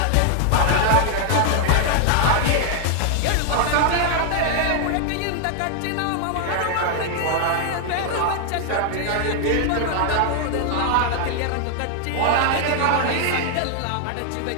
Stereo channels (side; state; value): both; different; correlation 0.00